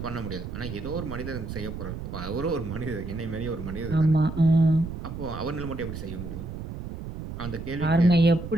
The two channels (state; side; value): noise; right; rumble, 8 dB below the sound